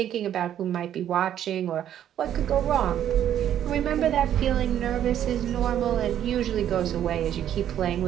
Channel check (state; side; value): quieter; left; 10.6 dB